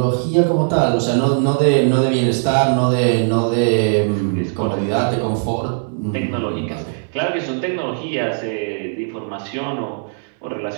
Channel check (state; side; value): silent; left; 66 dB below the other